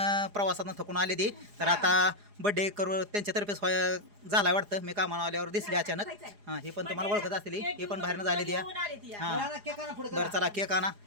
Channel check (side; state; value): left; late; 4.8 ms